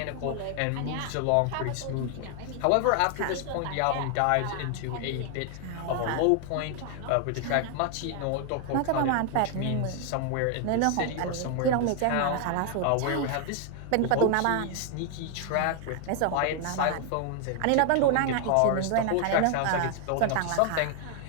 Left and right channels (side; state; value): both; different; correlation 0.00